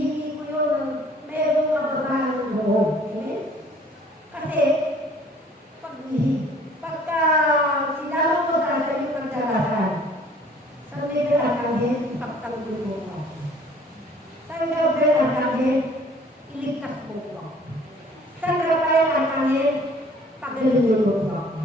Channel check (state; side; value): normal; both; correlation 0.55